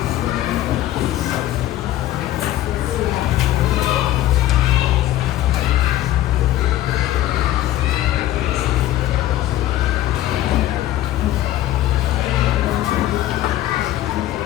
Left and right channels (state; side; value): quieter; right; 13.9 dB